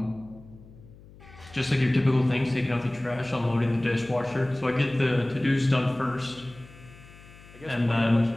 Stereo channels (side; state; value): left; noise; hum, 21 dB below the sound